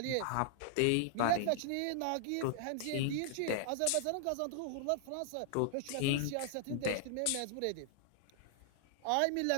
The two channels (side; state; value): both; different; correlation -0.01